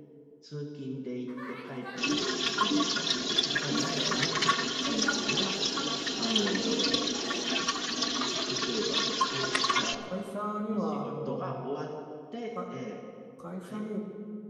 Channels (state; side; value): identical; both; correlation 1.00